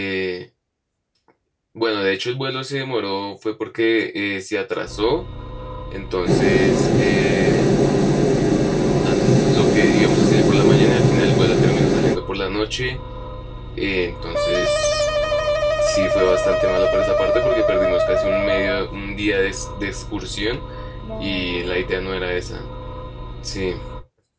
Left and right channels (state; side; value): identical; both; correlation 1.00